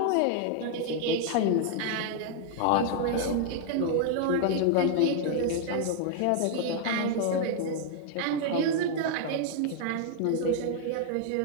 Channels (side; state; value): both; different; correlation 0.00